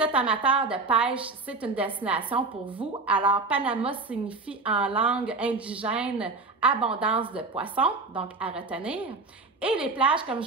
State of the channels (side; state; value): left; quieter; 3.7 dB